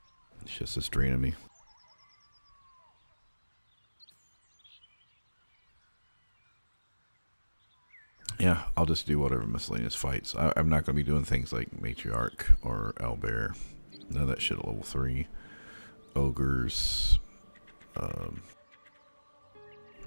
It's just this draining me. Yeah, I'll just do whatever miscellaneous fights. I'm not gonna be doing things like Matriarch or Owlbear. None of that shit at level 3. Ogres. I'll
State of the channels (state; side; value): inverted; both; correlation -1.00